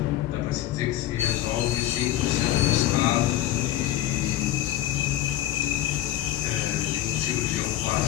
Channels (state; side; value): quieter; right; 13.4 dB